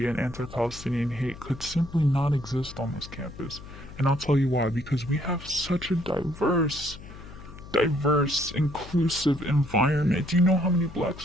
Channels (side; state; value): left; noise; hum, 16 dB below the sound